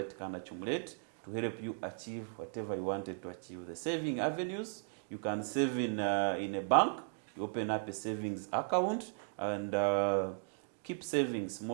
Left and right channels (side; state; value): left; silent; 53 dB below the other